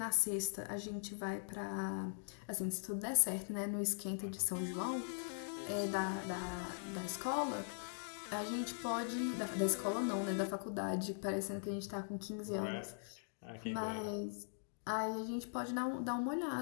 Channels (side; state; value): right; silent; digital silence